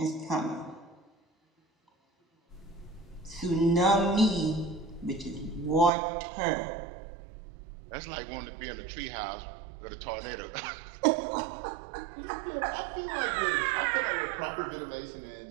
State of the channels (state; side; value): drops out; left; at 5.9 s